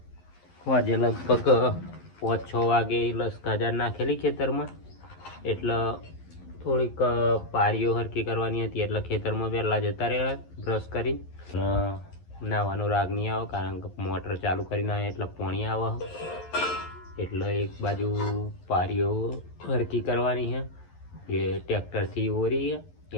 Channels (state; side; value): late; right; 11 ms